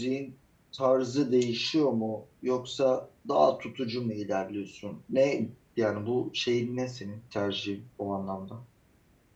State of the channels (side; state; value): both; identical; correlation 1.00